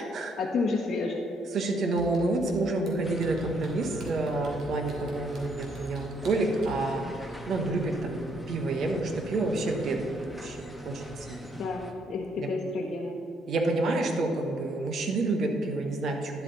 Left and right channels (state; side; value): normal; both; correlation 0.70